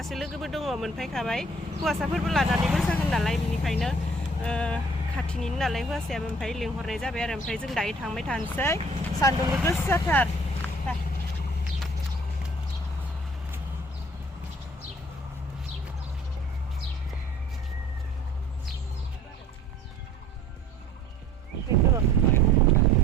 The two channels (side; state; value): both; normal; correlation 0.54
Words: लोगोबो दङ मोनफैखाबाय। हौवासाफोरबो लानानै मोसागोन नालाय बेनिखायनो खाथिनिनो नालाय हौवासायाबो ओमफ्राय लिंहरनाय जाबाय आरो। ओमफ्राय जों दायो थांबाय थानोसै सान्दुंबो गोसाथार।